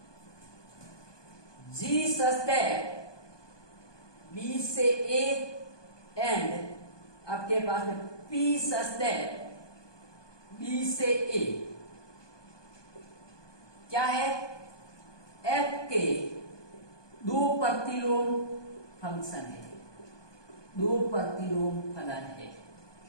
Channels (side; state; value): right; late; 1.2 ms